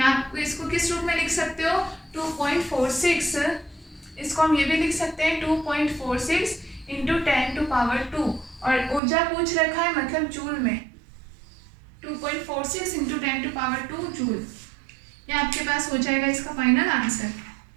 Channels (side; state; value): left; drops out; at 9.0 s